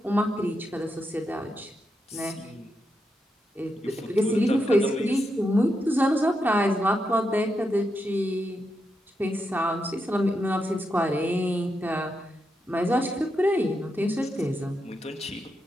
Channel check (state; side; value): normal; both; correlation 0.85